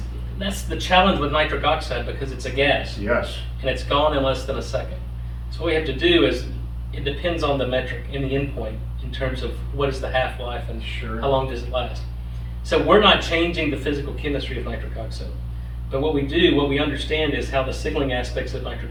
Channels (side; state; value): both; identical; correlation 1.00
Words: the challenge with nitric oxide, because it's a gas. Yes. And it's gone in less than a second. So what we have to do is, it depends on the metric and the endpoint in terms of what is the half-life and how long does it last. So we're not changing the physical chemistry of nitric oxide. But what we understand is how the signaling aspects of nitric